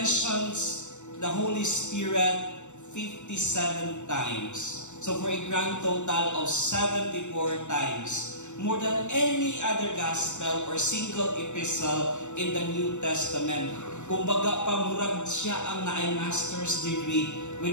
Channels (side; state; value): right; late; 0.84 ms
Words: the Holy Spirit 57 times. So for a grand total of 74 times. More than any other gospel or single epistle in the New Testament. Kumbaga, pamurag siya ang naay master's degree